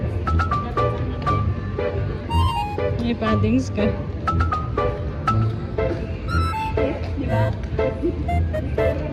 May paddings ka. Di ba?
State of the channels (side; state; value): both; identical; correlation 1.00